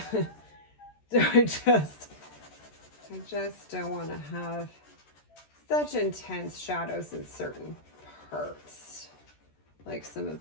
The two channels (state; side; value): late; right; 13 ms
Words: So I just don't want to have such intense shadows in certain parts, like some of